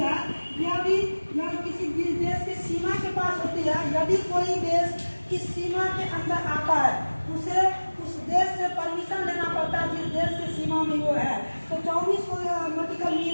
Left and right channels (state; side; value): inverted; both; correlation -1.00